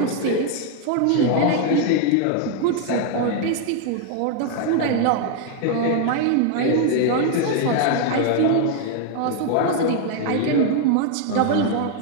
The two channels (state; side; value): different; both; correlation 0.00